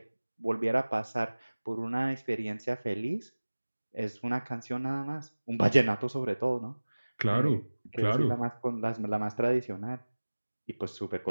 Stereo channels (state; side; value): inverted; both; correlation -1.00